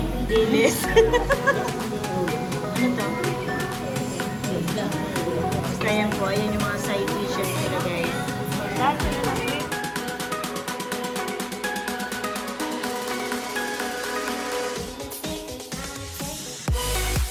Dilis. Ano to? Basta yan po. Ayan yung mga side dishes nila, guys. That's it.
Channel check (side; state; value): both; identical; correlation 1.00